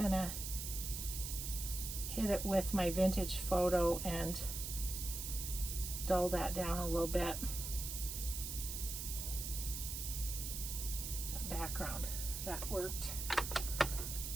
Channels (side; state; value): right; noise; hiss, 5 dB below the sound